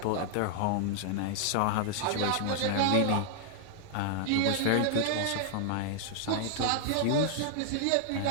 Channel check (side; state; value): both; different; correlation 0.00